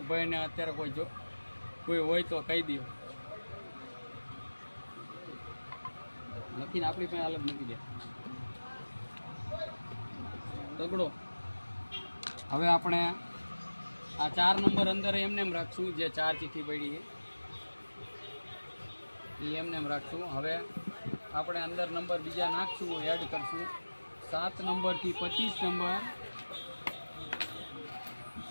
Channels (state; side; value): inverted; both; correlation -1.00